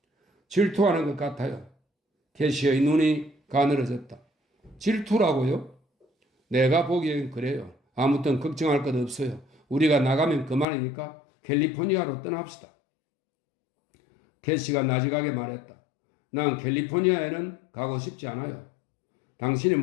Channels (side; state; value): right; drops out; at 10.7 s